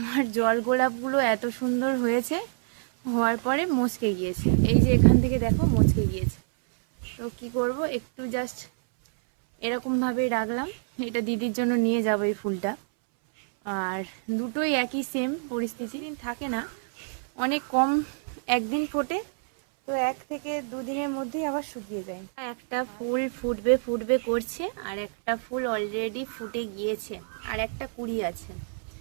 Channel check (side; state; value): left; silent; 60 dB below the other